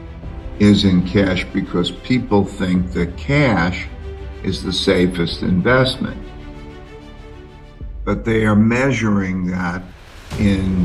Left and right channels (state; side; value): identical; both; correlation 1.00